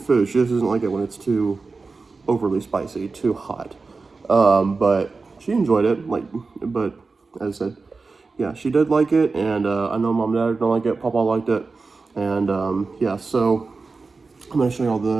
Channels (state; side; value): quieter; left; 4.1 dB